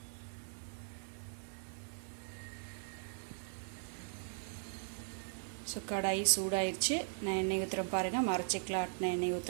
ஸோ கடாய் சூடாயிடுச்சு. நான் எண்ணெய் ஊற்றுறேன் பாருங்கள். மரச்சிக்கில் ஆட்டின எண்ணெய்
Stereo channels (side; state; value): left; silent; 52 dB below the other